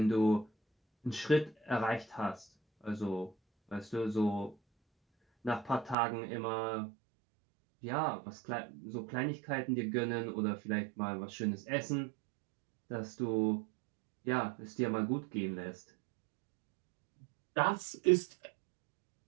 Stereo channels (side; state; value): left; drops out; at 6.0 s